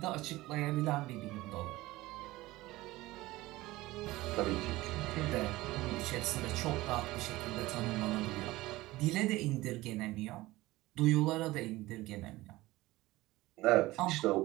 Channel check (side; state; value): left; quieter; 18.7 dB